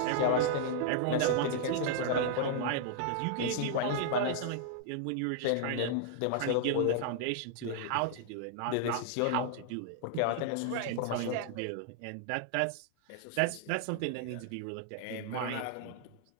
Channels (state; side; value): different; both; correlation -0.01